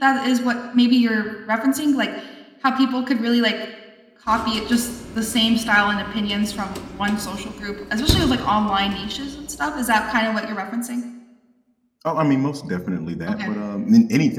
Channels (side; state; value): both; identical; correlation 1.00